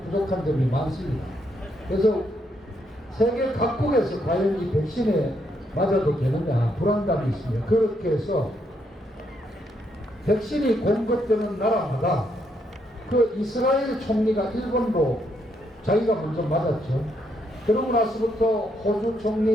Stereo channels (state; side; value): normal; both; correlation 0.75